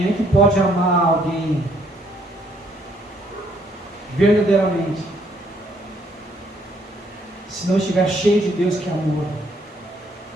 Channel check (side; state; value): both; normal; correlation 0.68